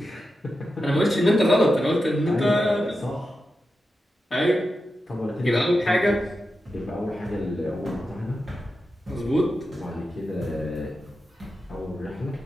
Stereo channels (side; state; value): both; normal; correlation 0.90